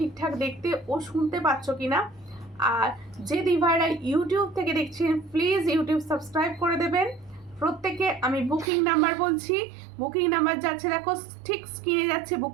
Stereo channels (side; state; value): left; drops out; at 8.7 s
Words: দেখতে ও শুনতে পাচ্ছ কিনা। আর যে দিভাইরা ইউটিউব থেকে দেখছেন প্লিজ ইউটিউব সাবস্ক্রাইব করে দেবেন। প্রত্যেকে আমি বুকিং নাম্বার বলছি, বুকিং নাম্বার যাচ্ছে, দেখো ঠিক স্ক্রিনে যাচ্ছে